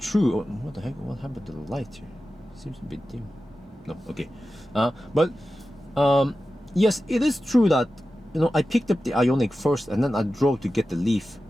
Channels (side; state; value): both; normal; correlation 0.93